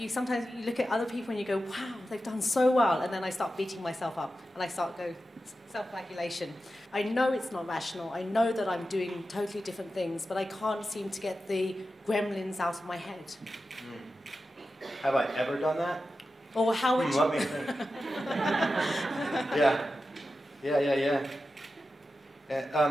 sometimes you look at other people and you go, wow, they've done so well, and then I start beating myself up, and I start go self-flagellation. I know it's not rational, I know that I'm doing totally different things, but I can't seem to get the gremlins out of my head. Have I ever done that? Or how would you... Let me think. Yeah.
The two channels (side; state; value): both; normal; correlation 0.92